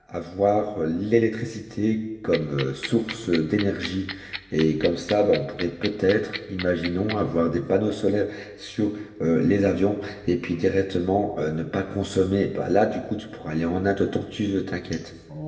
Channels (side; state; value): both; identical; correlation 1.00